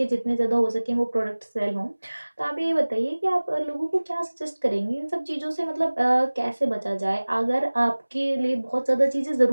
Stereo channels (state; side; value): inverted; both; correlation -1.00